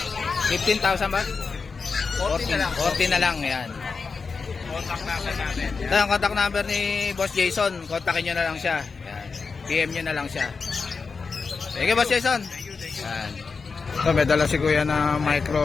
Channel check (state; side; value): quieter; right; 4.8 dB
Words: 15,000 ba? 14 na lang. 14 na lang, yan. Contact natin. Ito ang contact number ni Boss Jason. Kontakin nyo na lang siya. Yan. PM nyo na lang siya. Sige, Boss Jason. Yan. Ito, may dala si Kuya na